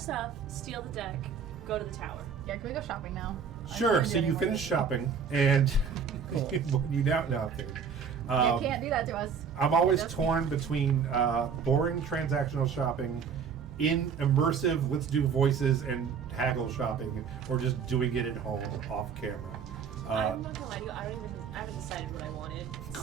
steal the deck, go to the tower. Yeah, can we go shopping now? I Sure. can't So do you anymore. finish shopping, and you now no, I'm kidding. You can't do that to us. I'm always Just- torn between boring transactional shopping, in immersive let's do voices and haggle shopping, or just doing it at home off camera. I'm not gonna lie to you, I haven't decided what I wanted.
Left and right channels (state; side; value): quieter; left; 6.5 dB